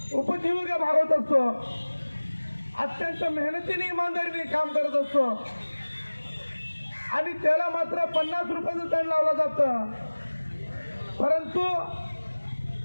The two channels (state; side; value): inverted; both; correlation -1.00